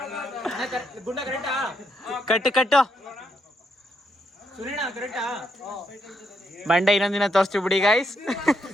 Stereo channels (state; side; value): normal; both; correlation 0.77